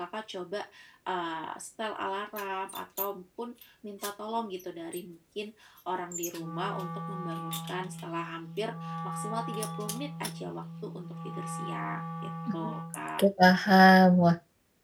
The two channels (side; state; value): both; identical; correlation 1.00